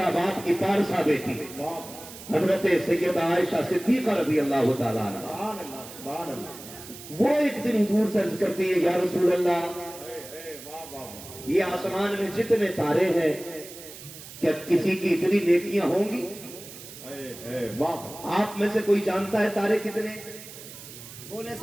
बाप की पारसा बेटी, हजरत सैयदा आयशा सिद्दीक़ा रज़ी अल्लाह तआला अन्हा, वो एक दिन हुजूर से अर्ज करती है, या रसूल अल्लाह, ये आसमान में जितने तारे हैं क्या किसी की इतनी नेकियां होंगी? आप में से कोई जानता है तारे कितने? बोले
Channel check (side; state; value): right; noise; hiss, 15 dB below the sound